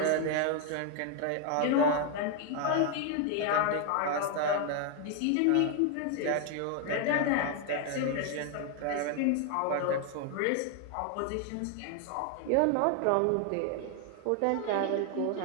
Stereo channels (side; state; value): both; different; correlation 0.01